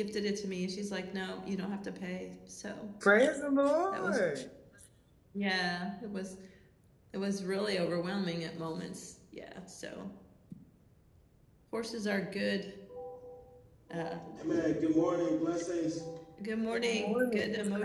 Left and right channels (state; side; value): identical; both; correlation 1.00